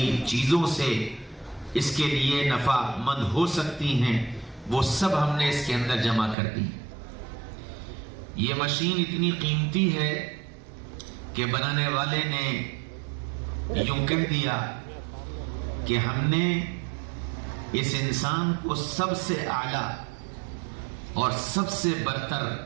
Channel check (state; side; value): drops out; left; at 6.4 s